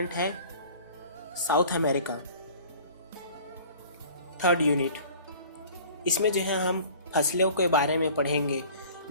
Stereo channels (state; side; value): inverted; both; correlation -0.46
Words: है साउथ अमेरिका। थर्ड यूनिट, इसमें जो है हम फसलों के बारे में पढ़ेंगे,